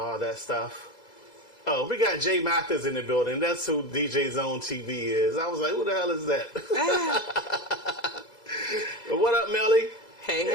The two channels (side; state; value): right; late; 2.0 ms